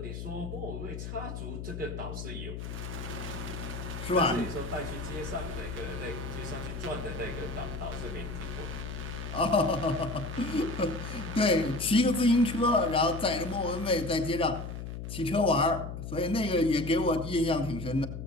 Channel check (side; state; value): left; noise; hum, 7 dB below the sound